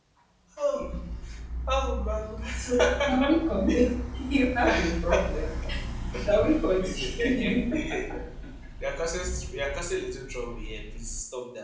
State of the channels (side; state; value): both; identical; correlation 1.00